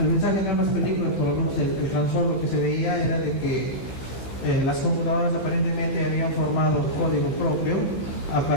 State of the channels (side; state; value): right; late; 16 ms